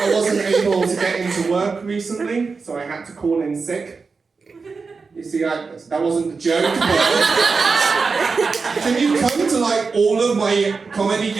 wasn't able to get into work recently, so I had to call in sick. You see, that wasn't the joke, but can you come to like all of my comedy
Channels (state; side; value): quieter; left; 4.7 dB